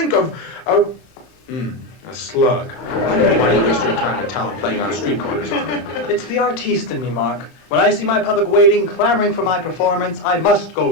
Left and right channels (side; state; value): right; late; 9.6 ms